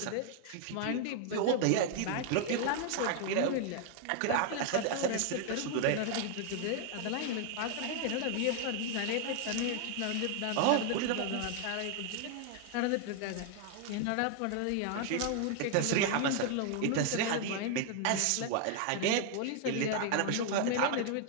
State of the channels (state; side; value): different; both; correlation 0.00